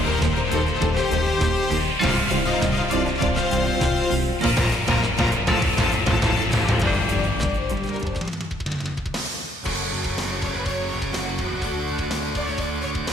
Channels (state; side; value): normal; both; correlation 0.71